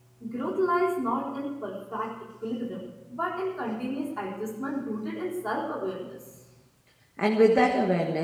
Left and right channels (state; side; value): identical; both; correlation 1.00